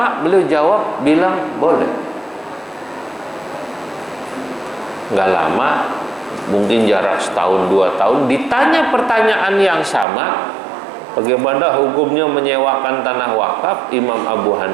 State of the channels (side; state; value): left; drops out; at 10.1 s